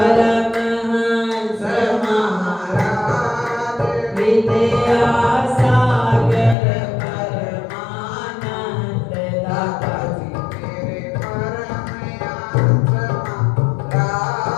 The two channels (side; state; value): right; drops out; at 6.6 s